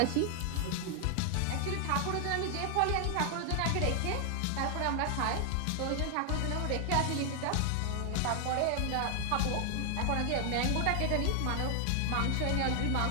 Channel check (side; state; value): both; different; correlation 0.00